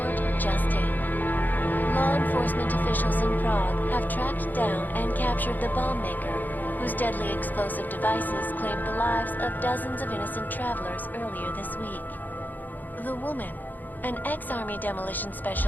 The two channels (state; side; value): late; right; 0.085 ms